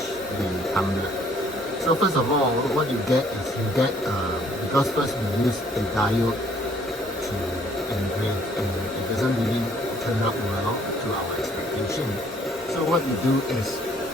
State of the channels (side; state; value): both; normal; correlation 0.62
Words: the tumbler. So first of all, what you get is because first we use a diode to engrave and it doesn't really turn out well to our expectation. So what we do is